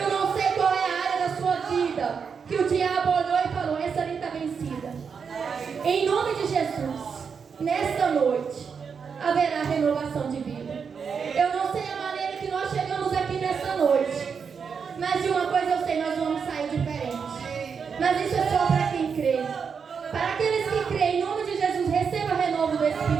não sei qual é a área da sua vida que o diabo olhou e falou, essa ali está vencida. Em nome de Jesus, nesta noite, haverá renovação de vida. Eu não sei a maneira que nós chegamos aqui nesta noite, mas de uma coisa eu sei, nós vamos sair diferente. Mas isso é só para quem crê. Para aqueles que creem, em nome de Jesus, receba renovo do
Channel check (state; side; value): quieter; left; 6.2 dB